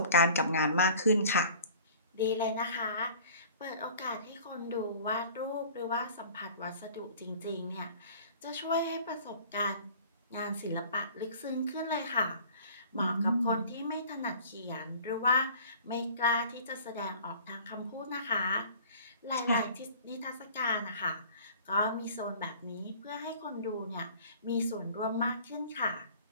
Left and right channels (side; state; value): both; inverted; correlation -0.47